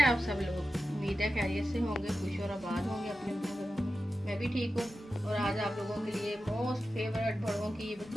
आप सब लोग? उम्मीद है खैरियत से होंगे, खुश और आबाद होंगे अपने घरों में। मैं भी ठीक हूँ और आज आप लोगों के लिए मोस्ट फेवरेट बड़ों की,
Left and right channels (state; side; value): normal; both; correlation 0.92